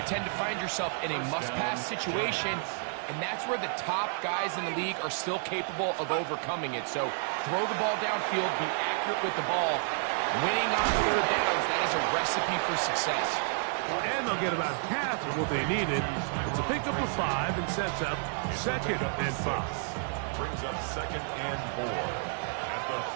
you tend to find yourself in a must-pass situation, and that's where the top guys in the league are still capable of overcoming it. So throw the ball downfield, be accurate with the ball. Winning on 3rd downs, that is a recipe for success. And they'll get about half of what they needed. It's a pickup of 5 and sets up 2nd and 5. Brings up 2nd and 4 at the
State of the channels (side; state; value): left; silent; 57 dB below the other